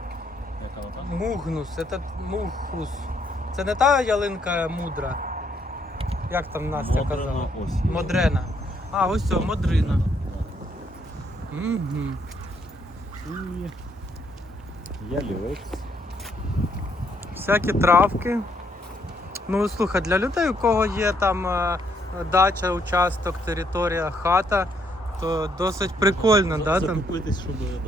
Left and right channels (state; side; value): normal; both; correlation 0.71